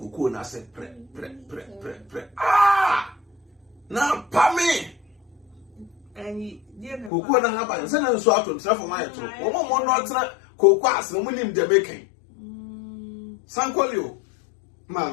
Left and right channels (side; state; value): right; drops out; at 7.1 s